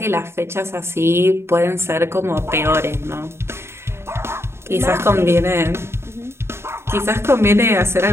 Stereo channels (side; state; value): left; late; 0.12 ms